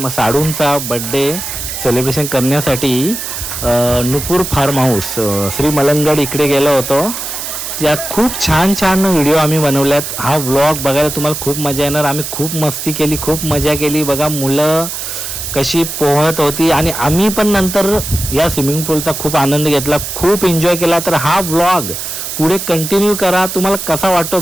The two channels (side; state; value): right; noise; hiss, 6 dB below the sound